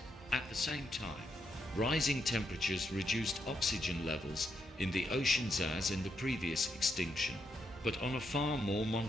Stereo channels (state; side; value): normal; both; correlation 0.81